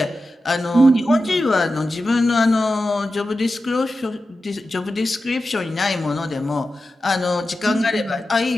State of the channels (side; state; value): both; normal; correlation 0.92